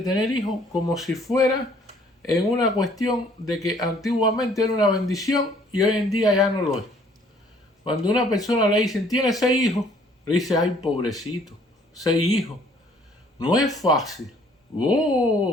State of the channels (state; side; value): normal; both; correlation 0.60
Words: hijos como si fuera en una cuestión de que antiguamente era una bendición y hoy en día ya no lo es. Cuando una persona le dicen, tiene 6 hijos, le dice, ay, pobrecito, 6 hijos. No es fácil.